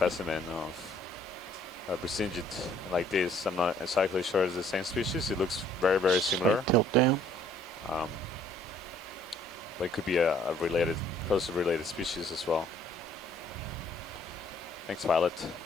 of a Brisingid like this. I'm not exactly sure it's the same species. It looks very, very similar. Tilt down. But it could be a related, closely related species as well. Thanks, pilot.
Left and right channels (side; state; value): both; normal; correlation 0.61